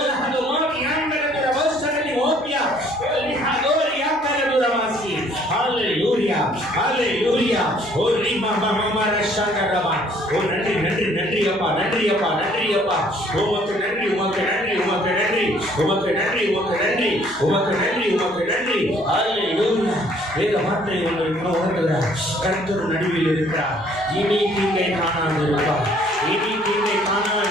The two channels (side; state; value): right; noise; hum, 28 dB below the sound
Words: லஹதோரி அங்கரதர வசனி ஓபியா ஓ லஹதோரி அங்கரதர வாசி. ஹalleluya, ஹalleluya. ஓ ரிமமமர சகரவா. ஓ நன்றி நன்றி நன்றி அப்பா, நன்றி அப்பா, நன்றி அப்பா. உமக்கு நன்றி, உமக்கு நன்றி, உமக்கு நன்றி, உமக்கு நன்றி, உமக்கு நன்றி, உமக்கு நன்றி, உமக்கு நன்றி. ஹalleluya. வேத வார்த்தை உங்களுக்கு உணர்த்துகிறார். கர்த்தர் நடுவில் இருக்கிறார். இனி தீங்கை காணாது இருப்பார், இனி தீங்கை